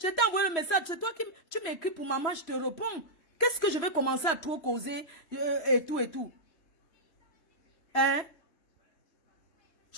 envoyé le message. C'est toi qui tu m'écris pour maman, je te réponds. Qu'est-ce que je vais commencer à trop causer et tout et tout? Hein?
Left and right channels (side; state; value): right; late; 3.0 ms